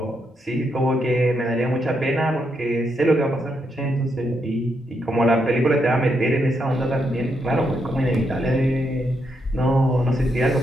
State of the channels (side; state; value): both; normal; correlation 0.80